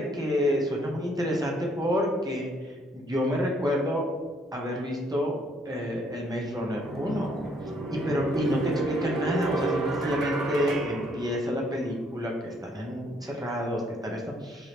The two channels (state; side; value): normal; both; correlation 0.67